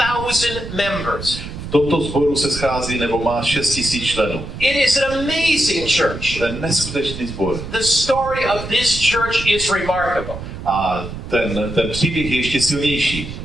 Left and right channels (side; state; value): right; noise; rumble, 9 dB below the sound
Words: members. V tomto sboru se schází nebo má 6 000 členů. It is an amazing church. To je neskutečný sbor. The story of this church is remarkable. A ten příběh je ještě silnější.